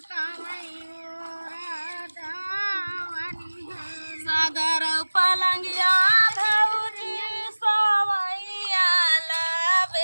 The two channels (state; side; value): inverted; both; correlation -1.00